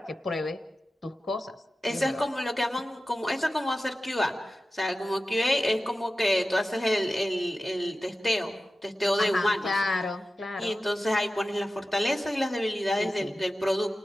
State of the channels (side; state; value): both; normal; correlation 0.94